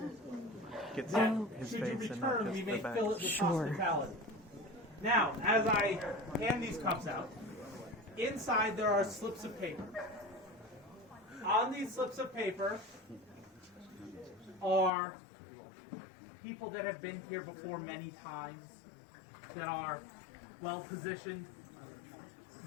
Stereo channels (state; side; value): drops out; right; at 14.9 s